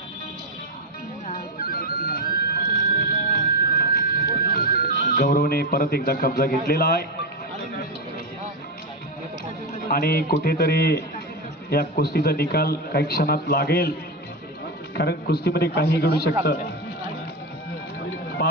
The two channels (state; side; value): normal; both; correlation 0.13